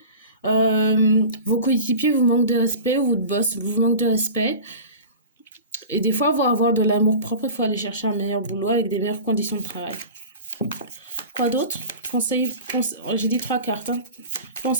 vos coéquipiers vous manquent de respect ou votre boss vous manque de respect. Et des fois, pour avoir de l'amour propre, il faut aller chercher un meilleur boulot avec des meilleures conditions de travail. Quoi d'autre? J'ai dit 3 cartes. Hein.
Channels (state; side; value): inverted; both; correlation -0.36